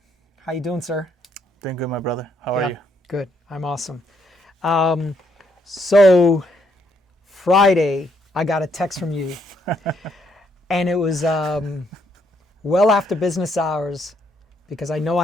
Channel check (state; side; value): normal; both; correlation 0.72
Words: How you doing, sir? Doing good, my brother. How are you? Good. I'm awesome. So Friday, I got a text from you, and it was well after business hours because I know